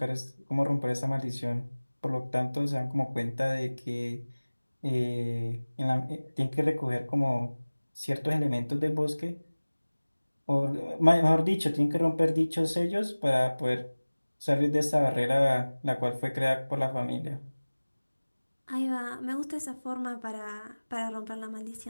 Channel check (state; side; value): inverted; both; correlation -1.00